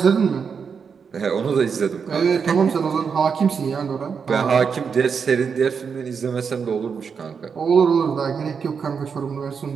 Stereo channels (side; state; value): left; quieter; 6.2 dB